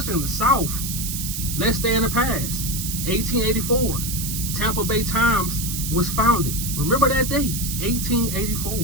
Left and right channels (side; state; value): right; noise; hiss, 4 dB below the sound